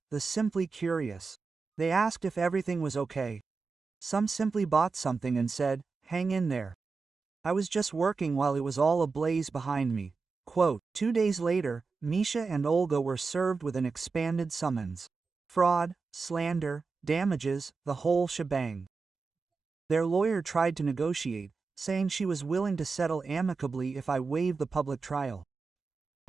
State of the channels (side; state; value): left; quieter; 4.5 dB